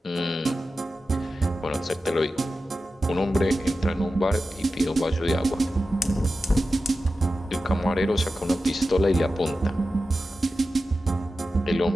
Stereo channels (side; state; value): both; normal; correlation 0.93